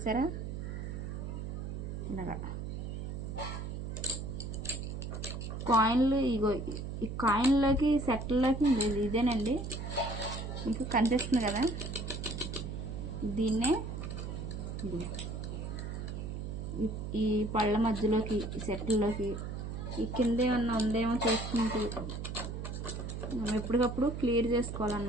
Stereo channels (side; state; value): right; noise; hum, 5 dB below the sound